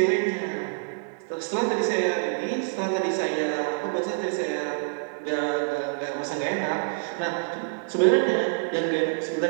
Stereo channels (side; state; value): left; silent; 60 dB below the other